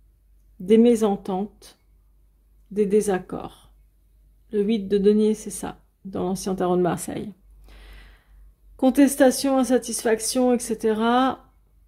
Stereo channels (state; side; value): identical; both; correlation 1.00